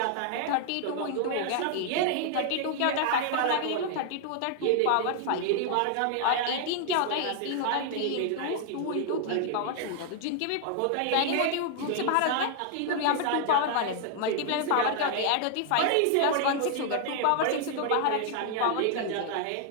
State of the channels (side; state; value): both; different; correlation 0.00